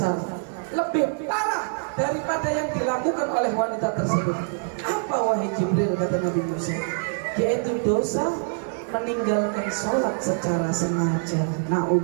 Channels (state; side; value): silent; left; 62 dB below the other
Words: lebih parah daripada yang dilakukan oleh wanita tersebut. Apa wahai Jibril, kata Nabi Musa? Yaitu dosa meninggalkan sholat secara sengaja.